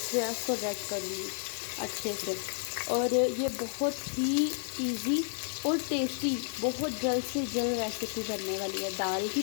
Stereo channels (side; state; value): right; silent; 57 dB below the other